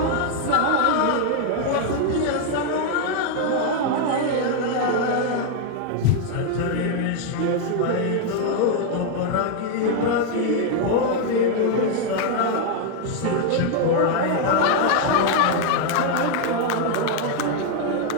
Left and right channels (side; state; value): both; different; correlation 0.00